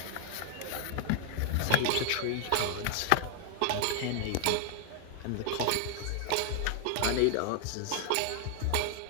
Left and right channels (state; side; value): different; both; correlation 0.00